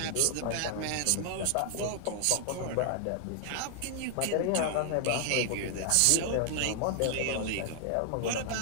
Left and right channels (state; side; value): different; both; correlation 0.00